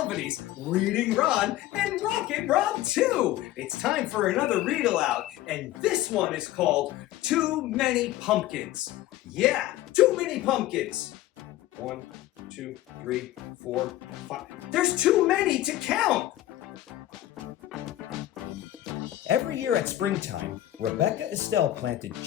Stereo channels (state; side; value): quieter; right; 14.7 dB